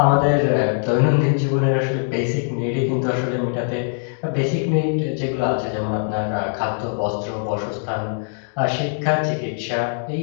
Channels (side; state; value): right; silent; digital silence